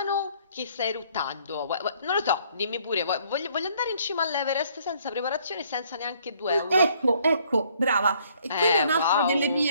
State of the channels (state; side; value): inverted; both; correlation -0.63